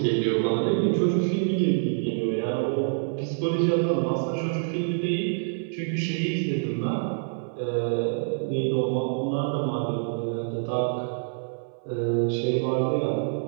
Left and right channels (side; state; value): left; silent; 58 dB below the other